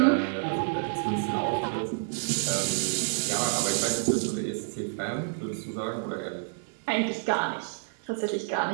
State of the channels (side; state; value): left; silent; digital silence